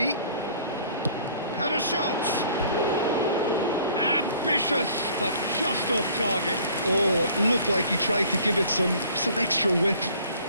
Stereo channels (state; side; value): inverted; both; correlation -0.54